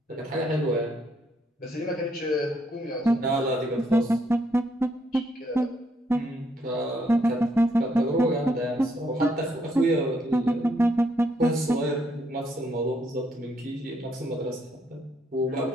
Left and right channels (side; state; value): both; normal; correlation 0.73